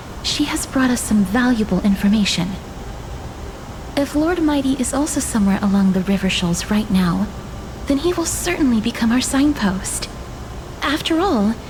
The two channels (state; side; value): identical; both; correlation 1.00